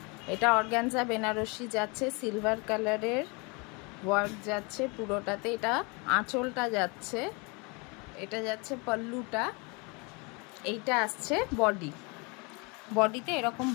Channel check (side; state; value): right; quieter; 30.2 dB